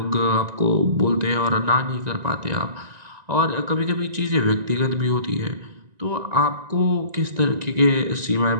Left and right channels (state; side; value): late; left; 1.9 ms